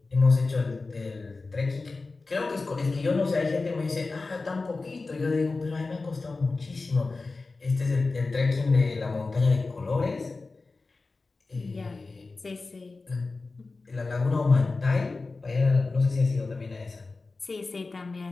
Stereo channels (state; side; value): quieter; right; 3.7 dB